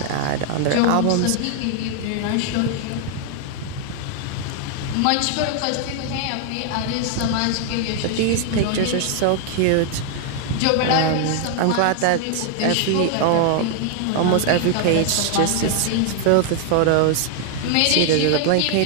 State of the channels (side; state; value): both; different; correlation 0.00